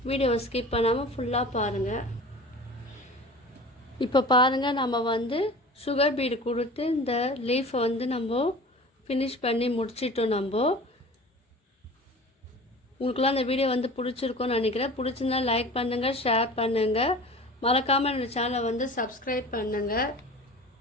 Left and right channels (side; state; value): both; normal; correlation 0.39